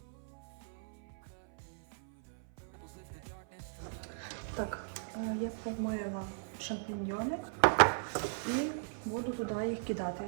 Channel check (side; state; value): left; silent; 53 dB below the other